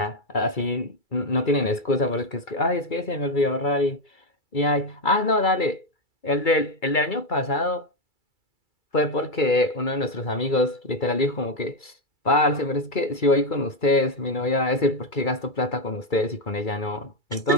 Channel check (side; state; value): right; late; 2.3 ms